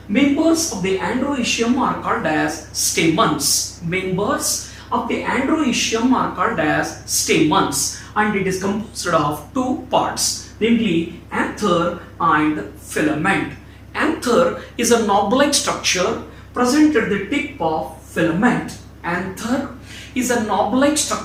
Members of the androecium are called as stamens. Members of the androecium are called as stamens and it is composed of two parts, namely anther and filament. Anther is a knob-like structure present at the tip of filament. Anther is a knob-like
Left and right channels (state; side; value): identical; both; correlation 1.00